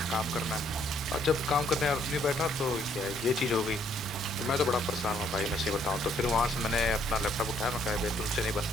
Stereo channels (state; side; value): normal; both; correlation 0.67